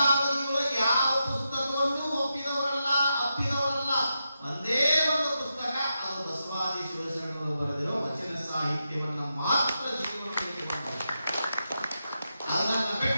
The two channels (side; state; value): both; inverted; correlation -0.87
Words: ಯಾವ ಪುಸ್ತಕವನ್ನು ಒಪ್ಪಿದವರಲ್ಲ, ಅಪ್ಪಿದವರಲ್ಲ. ಒಂದೇ ಒಂದು ಪುಸ್ತಕ, ಅದು ಬಸವಾದಿ ಶಿವಶರಣರು ಬರೆದಿರೋ ವಚನ ಸಾಹಿತ್ಯವನ್ನ ಮಾತ್ರ ಜೀವನದಲ್ಲಿ ಅದನ್ನ